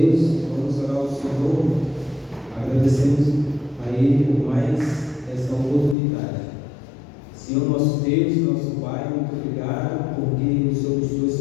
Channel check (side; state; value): right; drops out; at 6.0 s